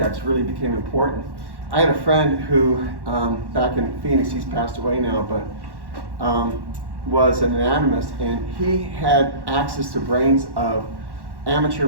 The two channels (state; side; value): late; left; 1.1 ms